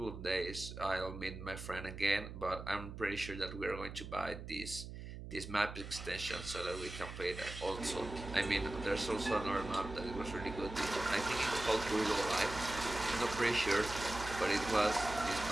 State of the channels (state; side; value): noise; right; hum, 10 dB below the sound